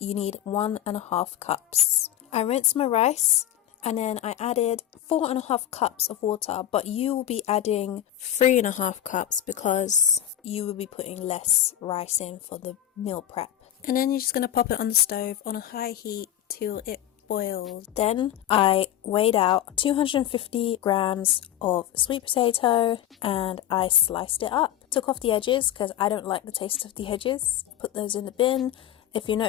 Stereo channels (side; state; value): right; quieter; 11.7 dB